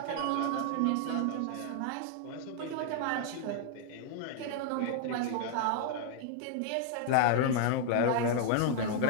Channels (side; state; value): both; different; correlation 0.00